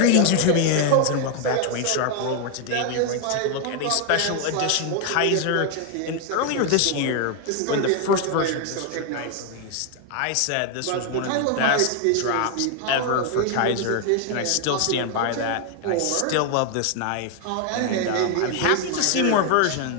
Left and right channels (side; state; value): both; different; correlation 0.01